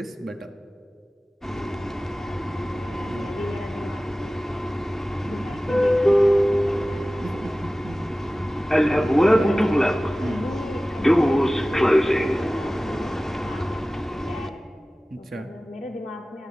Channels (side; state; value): both; normal; correlation 0.97